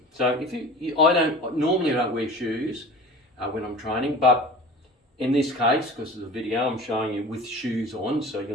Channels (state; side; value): normal; both; correlation 0.40